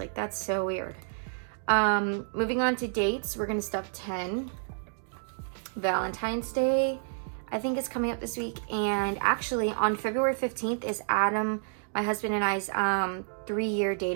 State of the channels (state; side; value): silent; left; digital silence